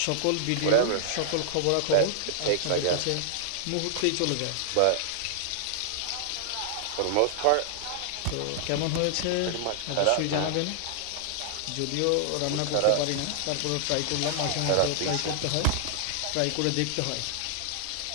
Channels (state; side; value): different; both; correlation -0.01